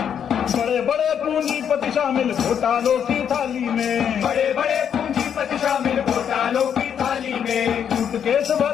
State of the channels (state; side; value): quieter; right; 8.4 dB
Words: बड़े बड़े पूंजीपति शामिल घोटालों की थाली में, बड़े बड़े पूंजीपति शामिल घोटालों की थाली में। सूटकेस